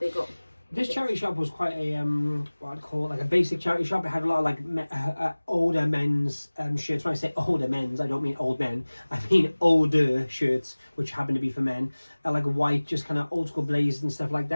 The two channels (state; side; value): inverted; both; correlation -1.00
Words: got. This charity shop was quite a what I'd call like a basic charity shop. It had a lot of like older men's shirts. When I say older men's, I don't mean old men. I mean older shirts, which happen to be for men. Like white, just kind of old school blazers and stuff like